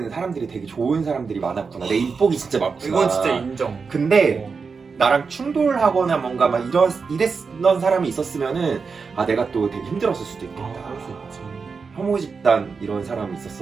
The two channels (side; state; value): left; quieter; 5.1 dB